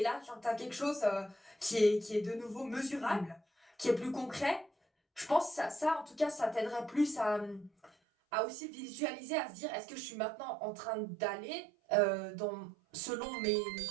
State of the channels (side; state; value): left; drops out; at 7.9 s